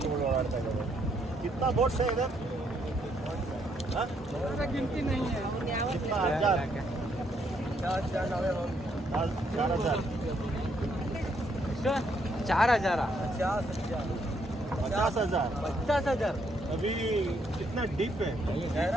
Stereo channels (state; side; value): normal; both; correlation 0.73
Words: ಓಡಾಡ್ತಾ ಇದ್ದಾರೆ. ಕಿತ್ನಾ ಬೋಟ್ ಸೇ ಇದೆ? ಗಿಂತಿ नहीं है कितना 1000 4000 50,000 अभी कितना डीप है?